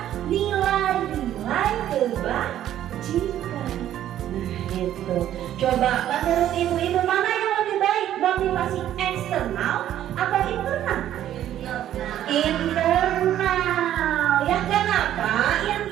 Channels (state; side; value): quieter; left; 11.8 dB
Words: nilai-nilai kebajikan. Nah itu. Coba menurut ibu-ibu mana yang lebih baik, motivasi eksternal atau internal? Internal. Ya kenapa